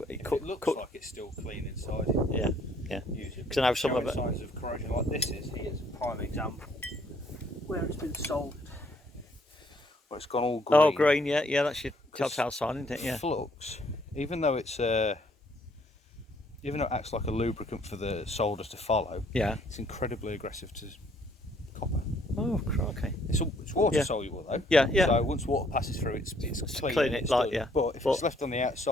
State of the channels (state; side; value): normal; both; correlation 0.65